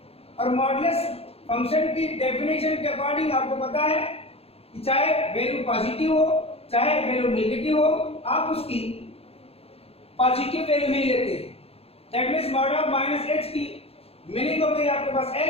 और modulus function की definition के according आपको पता है कि चाहे वैल्यू पॉजिटिव हो चाहे वैल्यू नेगेटिव हो आप उसकी पॉजिटिव वैल्यू ही लेते हैं। That means mod of minus h की मीनिंग हो गई आपके पास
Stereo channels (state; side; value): late; right; 0.29 ms